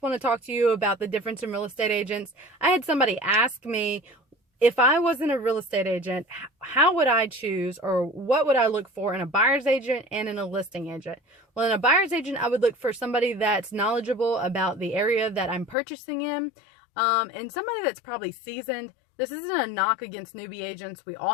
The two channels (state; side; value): drops out; right; at 15.8 s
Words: want to talk to you about the difference in real estate agents. I had somebody ask me, if I wasn't a real estate agent, how would I choose, or what would I look for in a buyer's agent and in a listing agent? Well, in a buyer's agent, I would look for somebody that's knowledgeable about the area that I'm purchasing in, and somebody that's probably seasoned. This isn't a knock against newbie agents. We